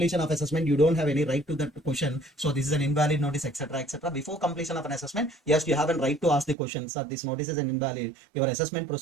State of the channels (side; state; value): left; drops out; at 6.6 s